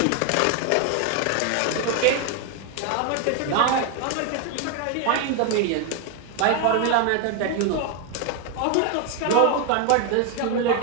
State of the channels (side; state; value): both; different; correlation 0.01